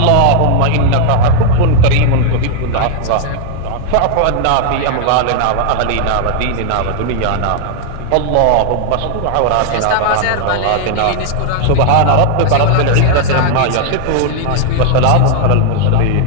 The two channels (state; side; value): different; both; correlation 0.00